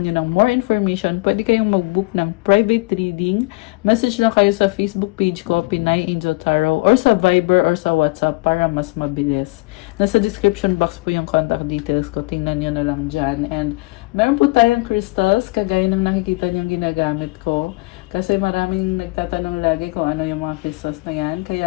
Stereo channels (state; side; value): quieter; right; 25.5 dB